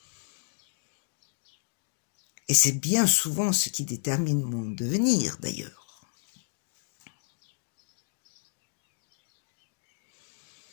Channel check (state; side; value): silent; right; digital silence